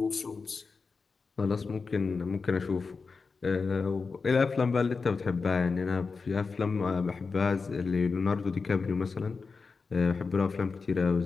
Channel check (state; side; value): quieter; right; 4.6 dB